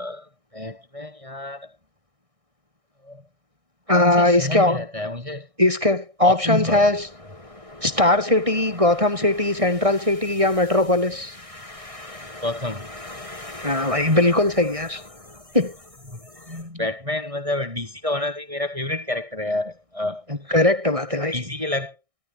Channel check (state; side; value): late; left; 1.6 ms